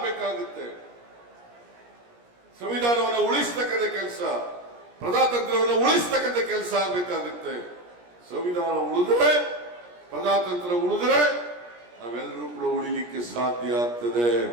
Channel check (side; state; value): left; late; 17 ms